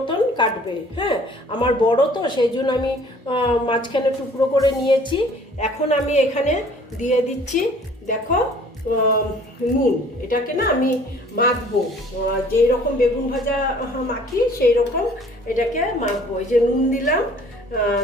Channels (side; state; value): both; normal; correlation 0.54